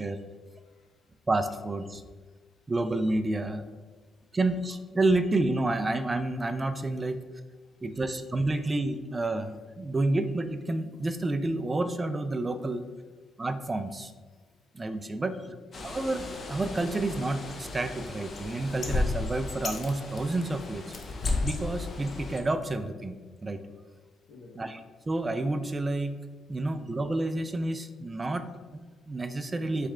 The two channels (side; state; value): both; normal; correlation 0.89